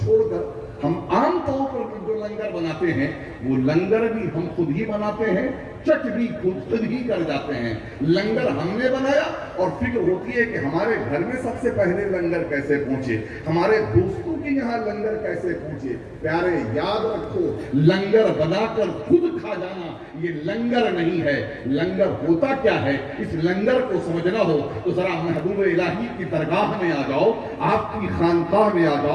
کر ہم عام طور پر جو لنگر بناتے ہیں وہ لنگر بھی ہم خود ہی بناتے ہیں، چٹ بھی خود ہی کر جاتے ہیں۔ لنگر ہم نے بنایا اور فکر ہوتی ہے کہ ہمارے گھر میں سب سے پہلے لنگر کیسے پہنچے، ہمارے دوستوں کے یہاں لنگر کیسے پہنچے۔ پیارے یاد رکھو، لنگر بنا کر خود کھا جانا یہ لنگر نہیں ہے۔ لنگر ہوتا کیا ہے، اس لنگر کو سمجھنا ہو تو ذرا محبوب الہی کی درگاہ میں آ جاؤ، آپ کی خانقاہ میں آ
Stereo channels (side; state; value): both; identical; correlation 1.00